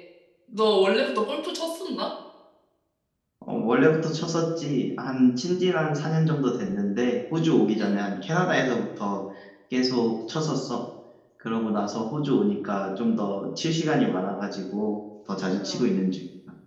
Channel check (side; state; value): both; identical; correlation 1.00